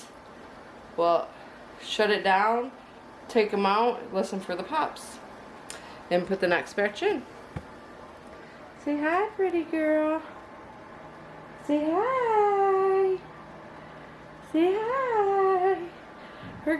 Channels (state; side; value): identical; both; correlation 1.00